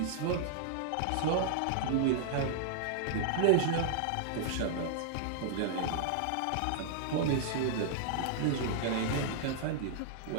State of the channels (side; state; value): both; different; correlation -0.01